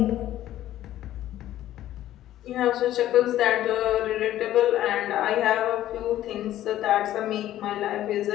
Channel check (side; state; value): right; quieter; 13.2 dB